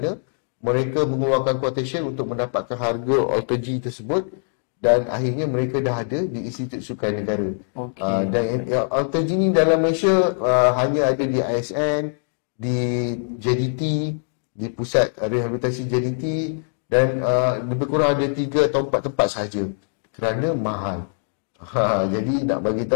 mereka mengeluarkan quotation untuk mendapatkan harga AlterG tersebut, dan akhirnya mereka dah ada di Institut Sukan Negara. Dan AlterG ni dalam Malaysia hanya ada di ISN, di JDT, di Pusat Rehabilitasi JDT, dan lebih kurang ada 3 atau 4 tempat sahaja kerana mahal. Jadi nak bagi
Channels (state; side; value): silent; right; 63 dB below the other